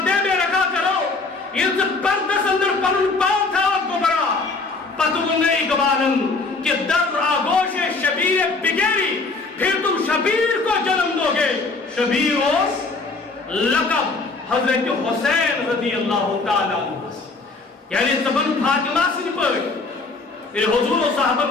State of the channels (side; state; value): right; quieter; 3.8 dB